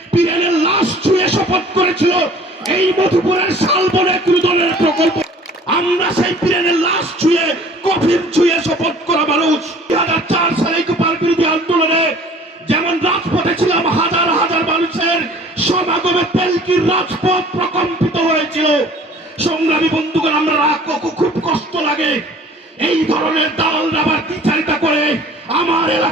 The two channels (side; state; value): both; normal; correlation 0.50